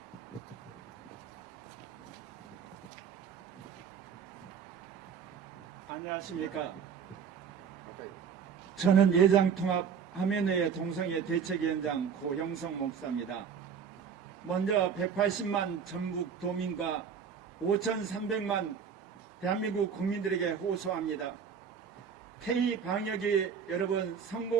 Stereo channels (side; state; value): left; quieter; 6.9 dB